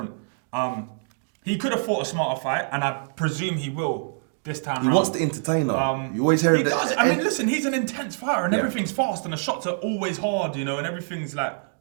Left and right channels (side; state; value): left; silent; digital silence